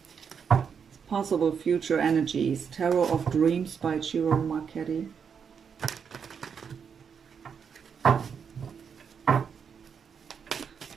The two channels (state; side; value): quieter; left; 6.8 dB